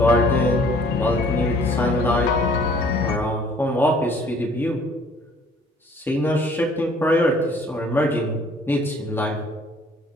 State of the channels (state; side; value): normal; both; correlation 0.57